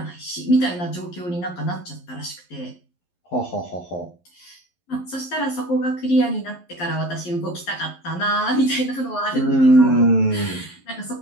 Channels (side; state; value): right; late; 11 ms